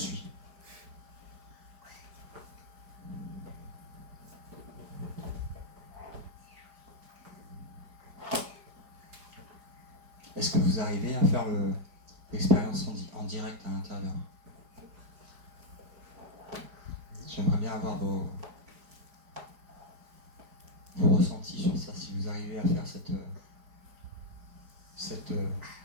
Est-ce que vous arrivez à faire l'expérience en direct à l'intérieur? J'aimerais bien avoir vos ressentis sur ça, si vous arrivez à faire cette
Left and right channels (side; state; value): left; late; 4.9 ms